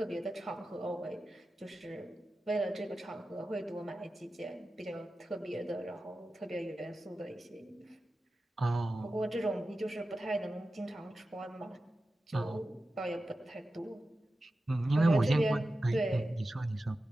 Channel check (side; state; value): both; normal; correlation 0.93